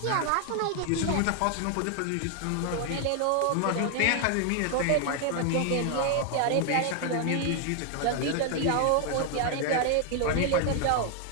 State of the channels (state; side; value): different; both; correlation 0.00